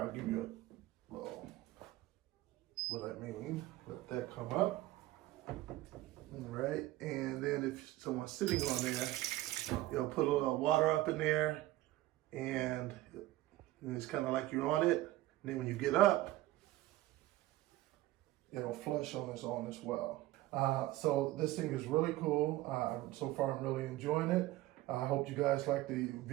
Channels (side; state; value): left; quieter; 16.5 dB